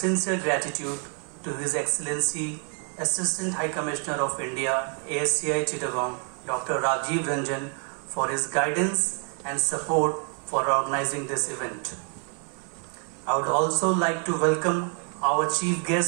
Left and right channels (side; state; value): left; quieter; 38.1 dB